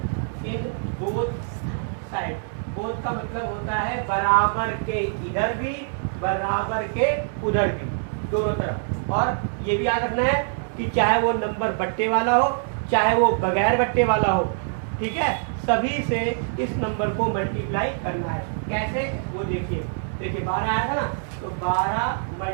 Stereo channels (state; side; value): silent; left; digital silence